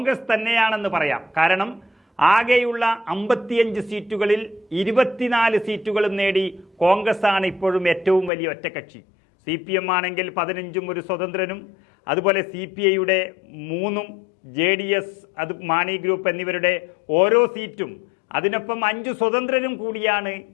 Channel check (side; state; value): right; drops out; at 8.3 s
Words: തന്നെയാണെന്ന് പറയാം. കാരണം ആകെയുള്ള 55 സീറ്റുകളിൽ 24 സീറ്റുകളും നേടി കോൺഗ്രസ് ആണ് ഇപ്പോഴും ഏറ്റവും വലിയ ഒറ്റക്കക്ഷി. CPM ആണെങ്കിൽ 15ഉം ഒരു സ്വതന്ത്രനും, അതുപോലെ CPIയുടെ 3ഉം, JDS, അത് മാണി ഗ്രൂപ്പ് എന്നിവരുടെ ഓരോ സീറ്റും, അതിനൊപ്പം 5 സ്വതന്ത്രരും കൂടിയാണ്